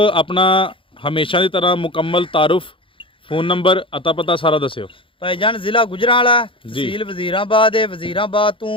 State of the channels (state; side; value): late; right; 0.25 ms